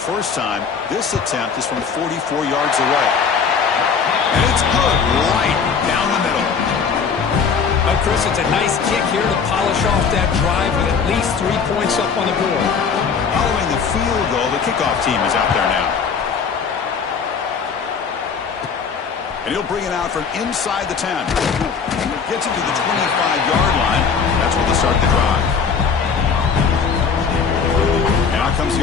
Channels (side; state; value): right; quieter; 6.0 dB